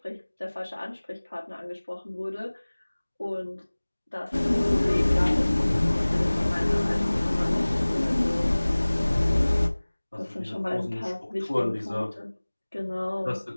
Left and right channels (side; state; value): both; inverted; correlation -1.00